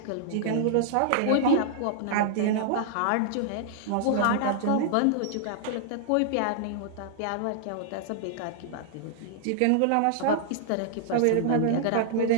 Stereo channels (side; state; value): both; different; correlation -0.01